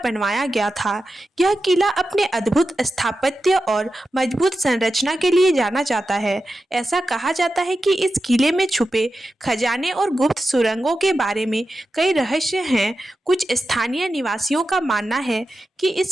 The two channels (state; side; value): normal; both; correlation 0.91